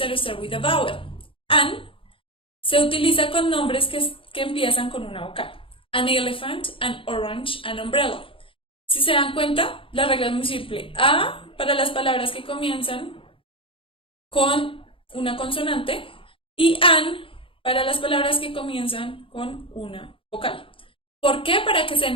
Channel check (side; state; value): right; late; 0.26 ms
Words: start with a vowel. An se utiliza con nombres que empiezan con una vocal. An elephant, an orange, an umbrella. Si se dan cuenta, la regla es muy simple. A para las palabras que comienzan con una consonante y an para las palabras que comienzan con una vocal. ¿Por qué? Para que se